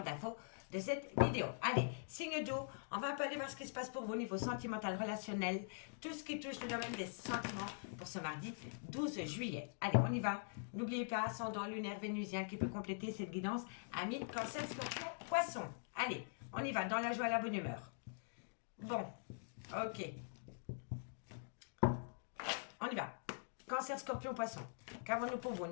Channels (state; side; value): silent; right; digital silence